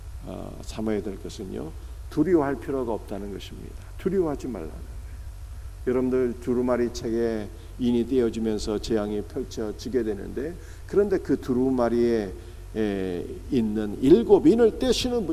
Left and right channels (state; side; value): identical; both; correlation 1.00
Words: 삼아야 될 것은요, 두려워할 필요가 없다는 것입니다. 두려워하지 말라는 거예요. 여러분들 두루마리 책에 인이 떼어지면서 재앙이 펼쳐지게 되는데, 그런데 그 두루마리에 있는 7인을 떼시는